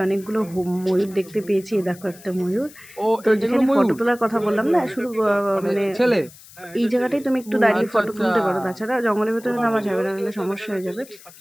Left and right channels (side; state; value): left; noise; hiss, 21 dB below the sound